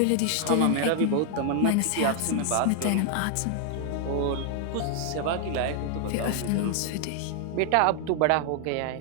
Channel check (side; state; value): both; different; correlation 0.00